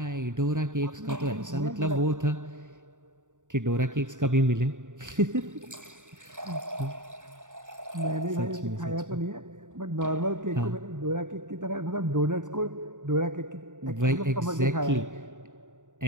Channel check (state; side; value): late; left; 0.86 ms